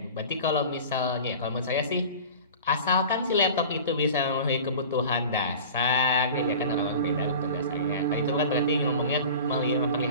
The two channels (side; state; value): both; inverted; correlation -0.38